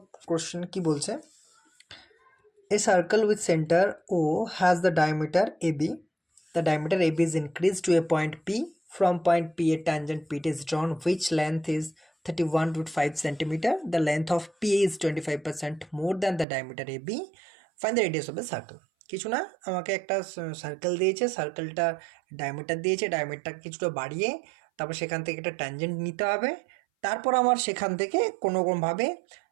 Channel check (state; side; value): drops out; left; at 16.4 s